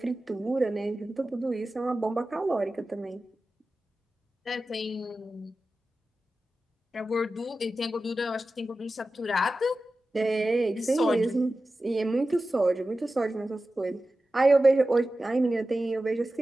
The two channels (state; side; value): normal; both; correlation 0.94